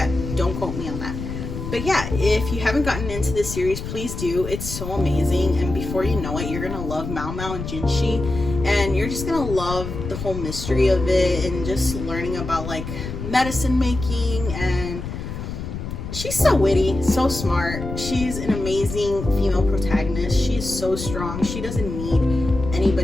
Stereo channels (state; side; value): noise; left; rumble, 7 dB below the sound